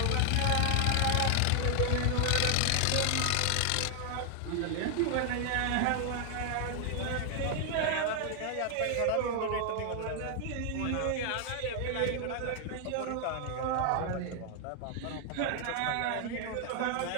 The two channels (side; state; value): both; different; correlation 0.00